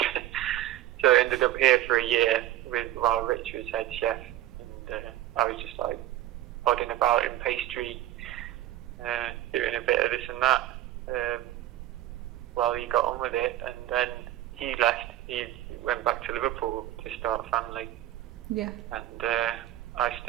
So I ended up here for a year while Rich was head chef, and I was just like podding about in pastry, doing a bit of this and that, while he got on with it, and then he left. He went back to Liverpool to start a family. Yeah. And I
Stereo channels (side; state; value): left; quieter; 14.0 dB